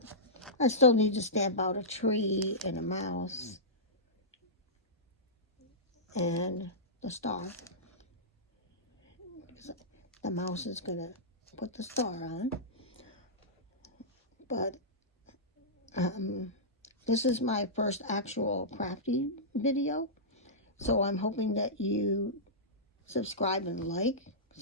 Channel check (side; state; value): both; normal; correlation -0.16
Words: need to stamp out a tree and a mouse and the star. The mouse is gonna put the star on, but this is my first actual crafty video, so I'm hoping that you subscribe and like,